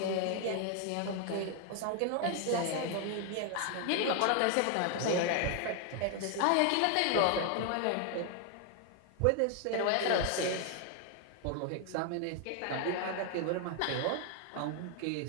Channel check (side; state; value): both; different; correlation 0.00